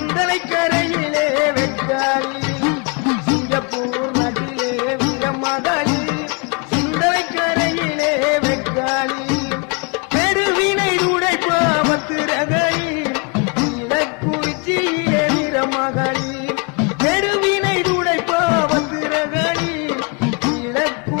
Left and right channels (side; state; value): right; quieter; 32.9 dB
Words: கரையிலே வெக்காளி சிங்கப்பூர் நாட்டிலே வீரமகாளி சிந்தனை கரையிலே வெக்காளி பெருவினை உடைப்பாவத்து ரகளி இலக்குறிச்சியிலே வீரமகாளி பெருவினை உடைப்பாவத்து ரகளி